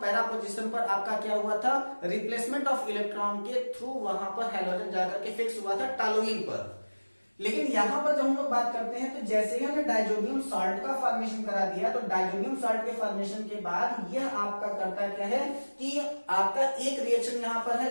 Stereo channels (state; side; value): inverted; both; correlation -1.00